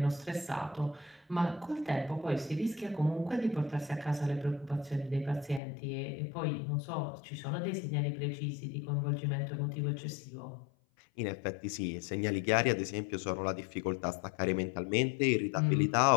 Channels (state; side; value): drops out; right; at 5.6 s